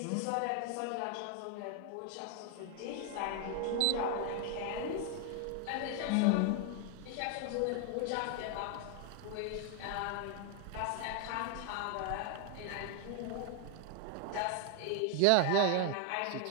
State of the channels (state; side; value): different; both; correlation 0.00